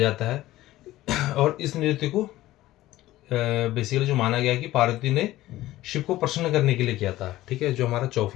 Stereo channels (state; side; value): quieter; right; 16.0 dB